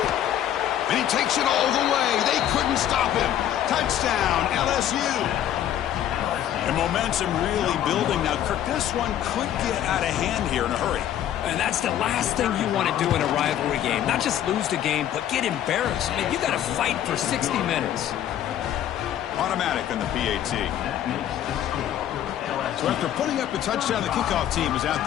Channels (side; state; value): right; quieter; 11.1 dB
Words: And he takes it all the way. They couldn't stop him. Touchdown, LSU. And momentum really building. Now, Kirk, this one could get out of hand here in a hurry. And that's the last thing you want to do in a rivalry game. Not just lose the game, but get embarrassed. I mean, you got to fight for 60 minutes. Automatic on the PAT. So after putting up a touchdown, the kickoff team is out